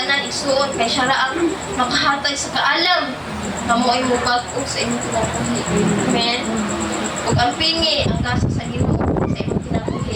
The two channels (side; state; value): both; identical; correlation 1.00